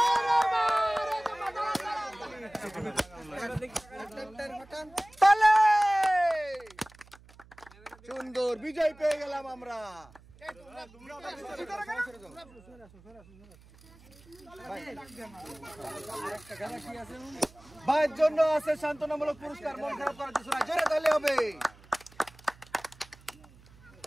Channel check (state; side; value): noise; right; hum, 24 dB below the sound